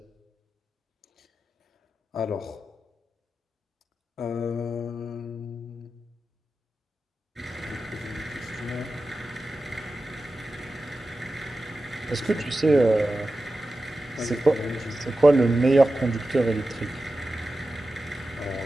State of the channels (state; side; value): normal; both; correlation 0.93